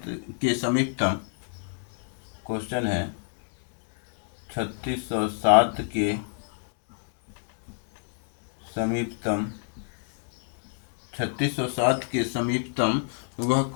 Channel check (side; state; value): right; silent; 57 dB below the other